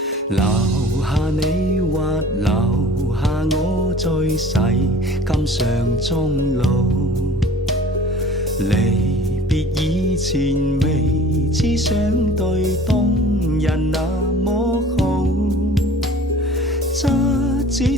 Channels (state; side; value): normal; both; correlation 0.46